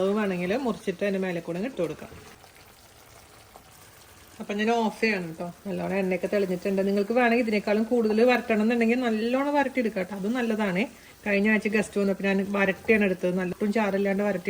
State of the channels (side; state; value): both; identical; correlation 1.00